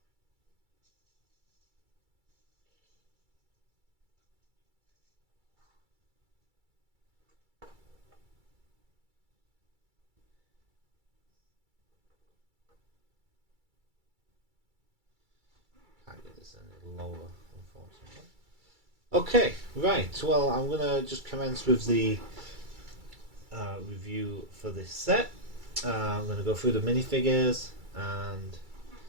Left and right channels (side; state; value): left; late; 2.3 ms